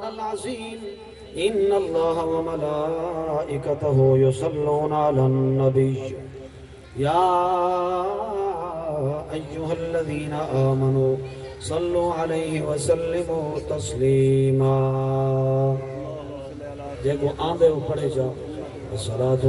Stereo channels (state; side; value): identical; both; correlation 1.00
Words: العظيم إن الله وملائكته يصلون على النبي يا أيها الذين آمنوا صلوا عليه وسلموا تسليما دیکھو آندے ہو پڑھے جا الصلاة